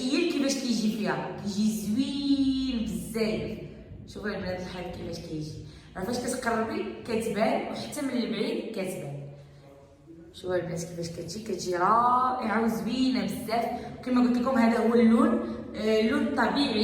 كيجي فيها، كيجي زوين بزاف. شوفوا البنات الحال كيفاش كيجي، فاش كتقربي كتبان وحتى من البعيد كتبان. شوفوا البنات كيفاش كتجي رائعه وزوينه بزاف. كما قلت لكم هذا هو اللون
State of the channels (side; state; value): both; identical; correlation 1.00